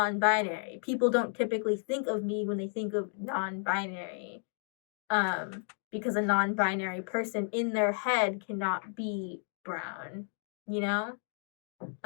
People don't typically think of me when they think of non-binary. Because a non-binary person in their head cannot be brown, you know?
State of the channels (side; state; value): right; silent; 56 dB below the other